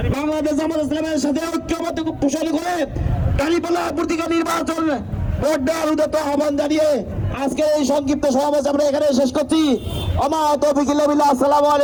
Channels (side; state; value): both; identical; correlation 1.00